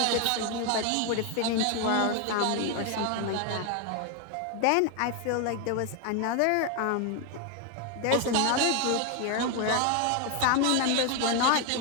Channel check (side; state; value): both; different; correlation 0.01